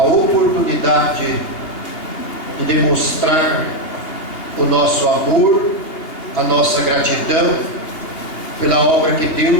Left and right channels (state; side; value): late; right; 2.8 ms